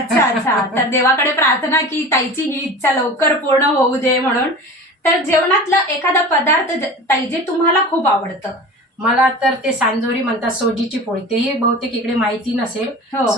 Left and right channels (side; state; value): both; normal; correlation 0.35